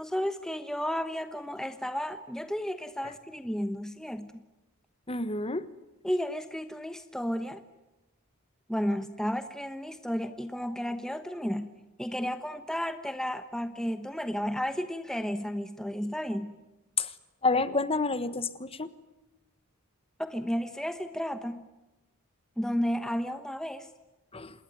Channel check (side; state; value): both; normal; correlation 0.76